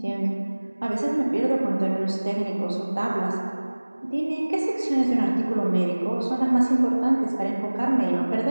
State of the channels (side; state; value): both; inverted; correlation -1.00